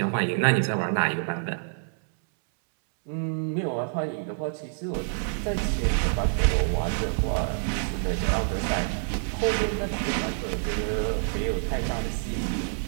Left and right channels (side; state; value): left; silent; 60 dB below the other